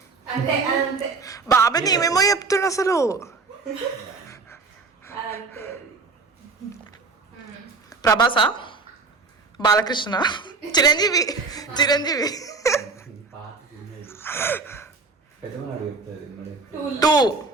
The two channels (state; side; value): quieter; left; 4.4 dB